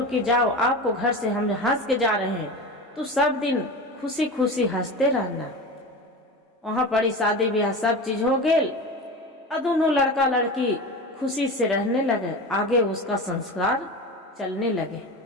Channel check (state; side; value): normal; both; correlation 0.28